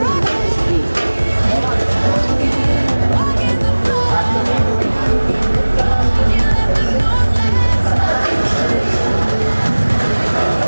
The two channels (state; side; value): inverted; both; correlation -1.00